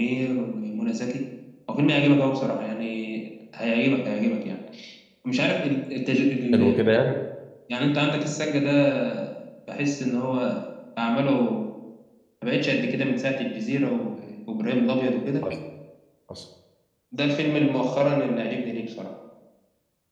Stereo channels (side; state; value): both; identical; correlation 1.00